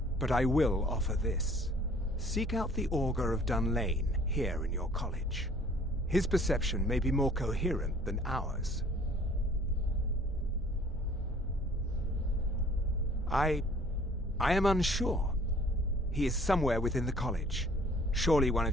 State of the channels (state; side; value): normal; both; correlation 0.54